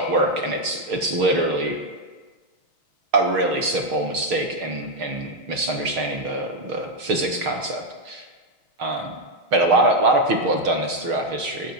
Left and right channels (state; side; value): late; left; 6.5 ms